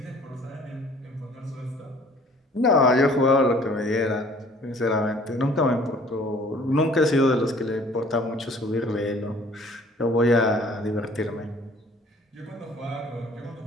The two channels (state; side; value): normal; both; correlation 0.54